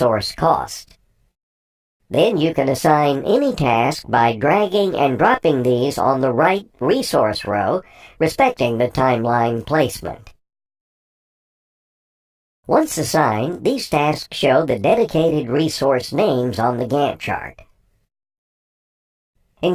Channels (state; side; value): identical; both; correlation 1.00